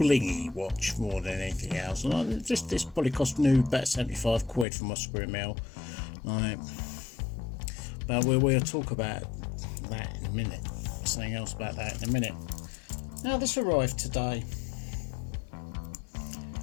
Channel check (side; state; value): right; drops out; at 4.7 s